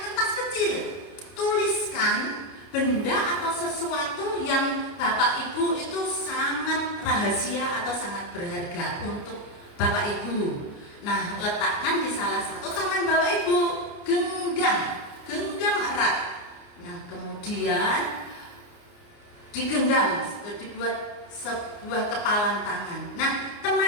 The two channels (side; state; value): right; late; 29 ms